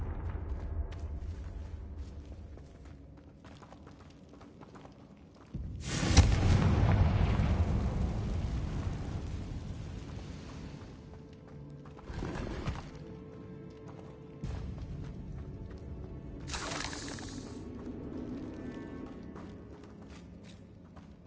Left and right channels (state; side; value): identical; both; correlation 1.00